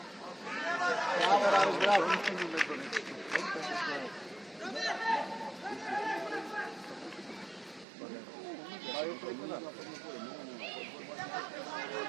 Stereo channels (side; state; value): left; drops out; at 7.9 s